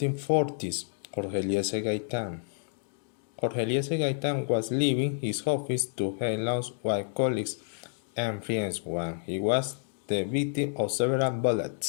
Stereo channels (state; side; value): silent; right; digital silence